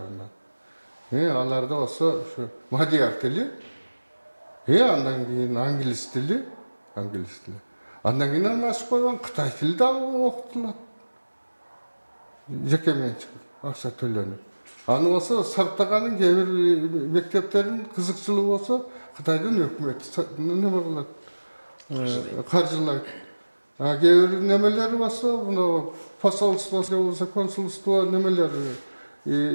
Аларда болсо ушу мадияр тили, андан кийин англис тили. Андан кийин ачып койгон Кытай тили дагы окутулат. Жеке менчик акча төлөнүп. Аны болсо сарптаганын кээ бир мектептерин кызыкчылыгы болсо Кытайдын өкмөтү неме кылат, каржылайт. Кээ бир немелери болсо, мына посольство же болсо консулство немелер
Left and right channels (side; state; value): both; inverted; correlation -1.00